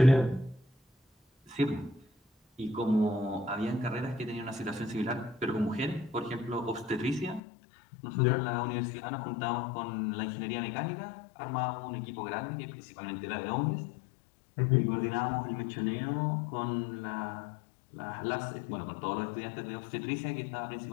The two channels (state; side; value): drops out; right; at 7.4 s